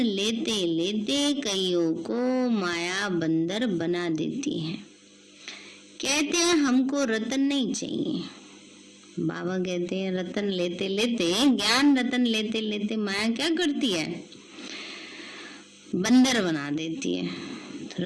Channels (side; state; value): both; identical; correlation 1.00